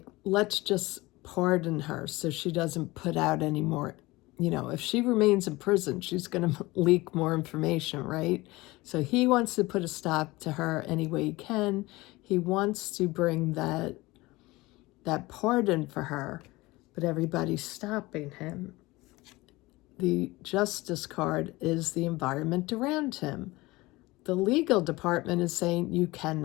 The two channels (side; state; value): right; quieter; 20.9 dB